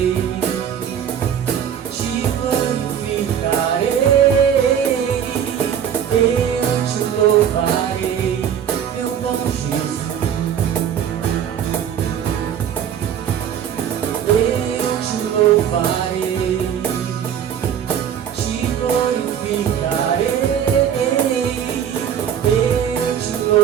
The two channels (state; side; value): quieter; left; 8.9 dB